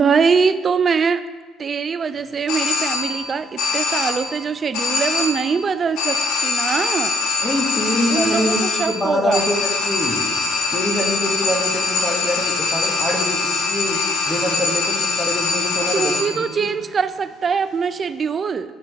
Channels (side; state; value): both; normal; correlation 0.66